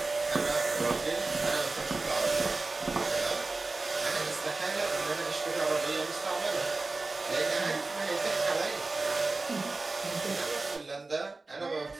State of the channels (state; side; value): quieter; left; 3.5 dB